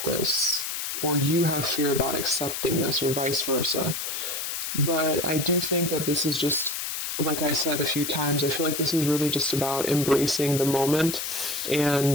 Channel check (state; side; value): noise; left; hiss, 4 dB below the sound